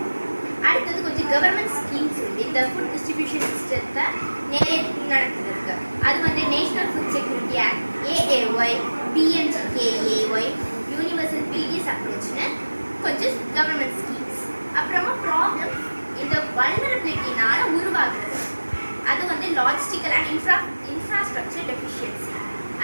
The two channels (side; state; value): both; inverted; correlation -1.00